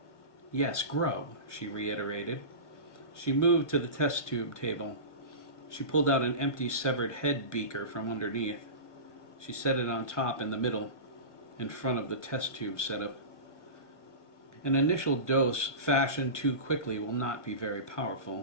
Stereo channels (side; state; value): right; late; 1.0 ms